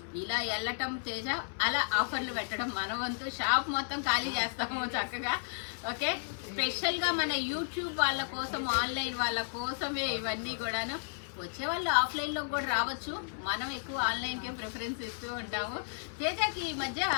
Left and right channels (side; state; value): right; silent; digital silence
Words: ఇలా వెళ్ళటం తేజ, అలా ఆఫర్లు పెట్టడం మన వంతు. షాప్ మొత్తం ఖాళీ చేస్తాము చక్కగా. ఓకే, స్పెషల్ గా మన యూట్యూబ్ వాళ్ళ కోసం, ఆన్లైన్ వాళ్ళ కోసమే ఇవన్నీ కూడాను. వచ్చే వాళ్ళు ఆఫ్లైన్ లో కూడా రావచ్చు, మనం ఎక్కువ ఆన్లైన్ కే ప్రిఫరెన్స్ ఇస్తూ ఉంటాము. తేజకి ఈ మధ్య